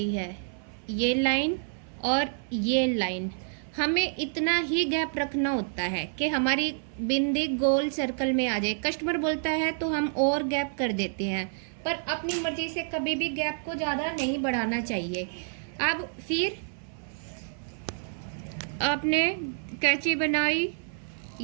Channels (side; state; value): left; silent; 56 dB below the other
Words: है, ये लाइन और ये लाइन, हमें इतना ही गैप रखना होता है कि हमारी बिंदी गोल सर्कल में आ जाए। कस्टमर बोलता है तो हम और गैप कर देते हैं, पर अपनी मर्जी से कभी भी गैप को ज़्यादा नहीं बढ़ाना चाहिए। अब फिर आपने कैंची बनाई,